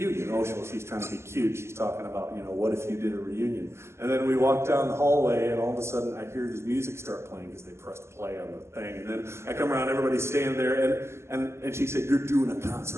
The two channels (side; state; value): left; late; 0.13 ms